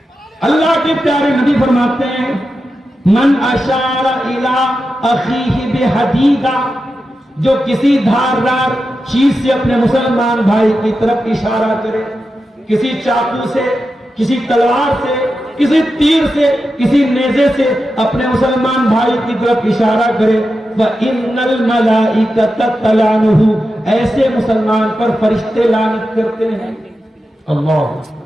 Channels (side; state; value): both; normal; correlation 0.90